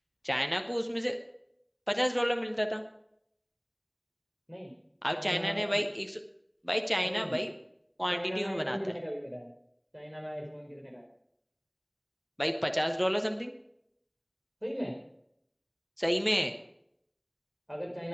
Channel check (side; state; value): both; identical; correlation 1.00